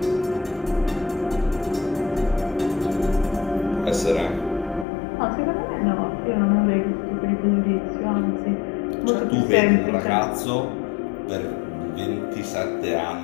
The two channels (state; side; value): drops out; right; at 4.9 s